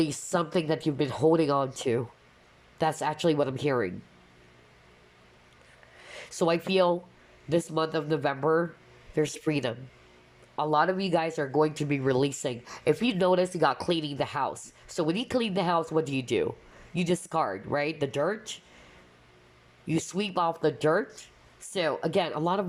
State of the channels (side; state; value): both; identical; correlation 1.00